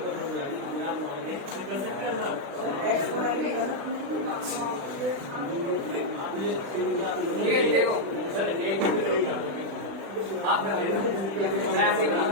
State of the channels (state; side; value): late; left; 36 ms